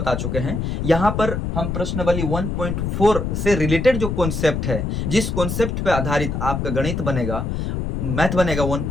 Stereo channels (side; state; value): left; noise; rumble, 2 dB below the sound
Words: चुके हैं। यहाँ पर हम प्रश्नावली 1.4 से रिलेटेड जो कॉन्सेप्ट है, जिस कॉन्सेप्ट पे आधारित आपका गणित बनेगा, मैथ बनेगा